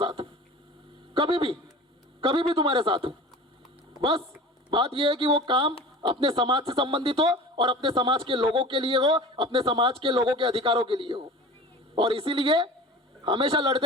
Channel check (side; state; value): both; normal; correlation 0.39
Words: हूँ, कभी भी तुम्हारे साथ हूँ. बस बात यह है कि वो काम अपने समाज से संबंधित हो और अपने समाज के लोगों के लिए हो, अपने समाज के लोगों के अधिकारों के लिए हो. और इसीलिए हमेशा